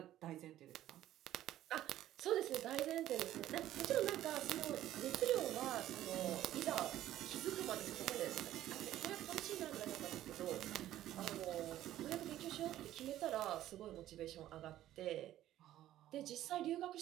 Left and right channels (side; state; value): left; quieter; 13.3 dB